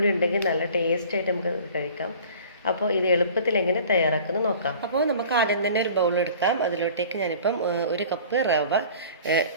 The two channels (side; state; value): both; inverted; correlation -0.45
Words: ഉണ്ടെങ്കിൽ നല്ല ടേസ്റ്റ് ആയിട്ട് നമുക്ക് കഴിക്കാം. അപ്പോൾ ഇത് എളുപ്പത്തിൽ എങ്ങനെ തയ്യാറാക്കുന്നത് നോക്കാം. അപ്പോൾ നമുക്ക് ആദ്യം തന്നെ ഒരു ബൗൾ എടുക്കാം. അതിലോട്ടേക്ക് ഞാനിപ്പം 1 കപ്പ് റവ